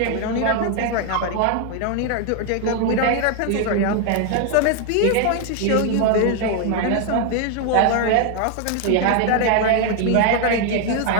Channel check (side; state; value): both; different; correlation 0.01